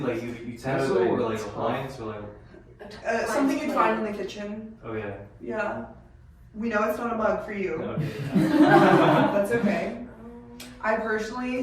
like utensil or like appliance or like? Something you'd find in the kitchen. Oh yeah. Yeah. We know it's not a mug for you. Okay. That's okay. I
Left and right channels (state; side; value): identical; both; correlation 1.00